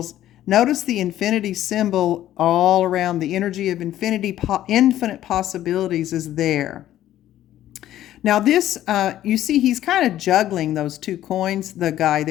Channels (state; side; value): quieter; right; 12.8 dB